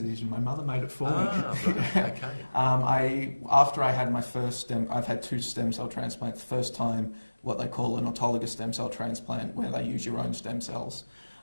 My mother made it for me. Right. Okay. After I had my first I've had 2 stem cell transplants. First time, what they call an autologous stem cell transplant, where they use your own stem cells.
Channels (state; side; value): inverted; both; correlation -1.00